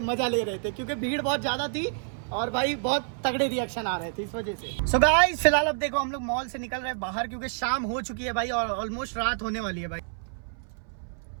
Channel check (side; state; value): left; silent; 59 dB below the other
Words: मजा ले रहे थे क्योंकि भीड़ बहुत ज्यादा थी और भाई बहुत तगड़े रिएक्शन आ रहे थे इस वजह से। सो गाइस फिलहाल अब देखो हम लोग मॉल से निकल रहे हैं बाहर क्योंकि शाम हो चुकी है भाई और ऑलमोस्ट रात होने वाली है भाई।